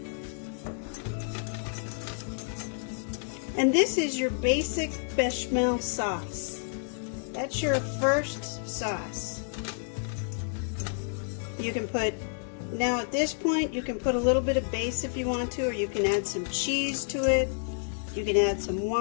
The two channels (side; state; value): right; silent; digital silence